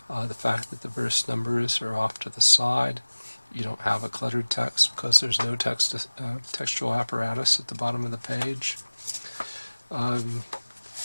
the fact that the verse numbers are off to the side. You don't have a cluttered text because there's no textual apparatus at the bottom of the page.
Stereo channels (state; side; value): inverted; both; correlation -1.00